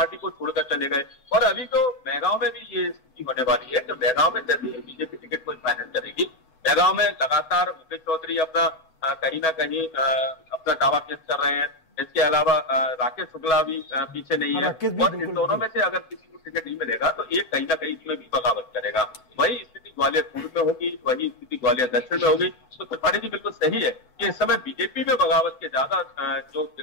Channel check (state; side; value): late; right; 12 ms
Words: को छोड़कर चले गए। और अभी तो मैगांव में भी ये स्थिति होने वाली है कि मैगांव में जैसे ही बीजेपी टिकट को फाइनल करेगी, मैगांव में लगातार मुकेश चौधरी अपना कहीं ना कहीं अपना दावा पेश कर रहे हैं। इसके अलावा राकेश शुक्ला भी पीछे नहीं है, और इन दोनों में से अगर किसी को टिकट नहीं मिलेगा तो एक कहीं ना कहीं इसमें भी बगावत करेगा। वही स्थिति ग्वालियर पूर्व में होगी, वही स्थिति ग्वालियर दक्षिण में होगी। तो त्रिपाठी जी बिल्कुल सही है कि इस समय बीजेपी में बगावत के ज्यादा